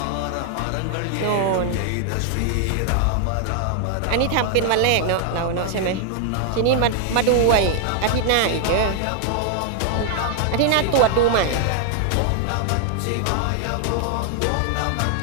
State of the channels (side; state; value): both; different; correlation 0.00